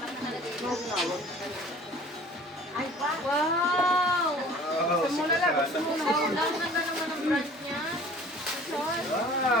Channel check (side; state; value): both; normal; correlation 0.48